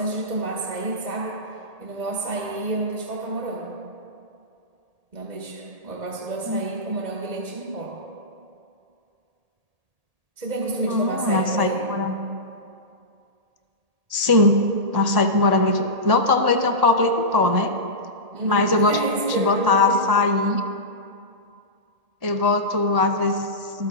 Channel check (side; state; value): left; late; 1.8 ms